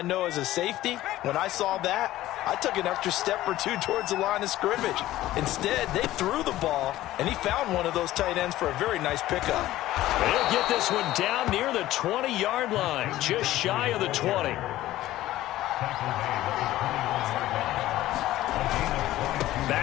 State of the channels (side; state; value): right; quieter; 15.3 dB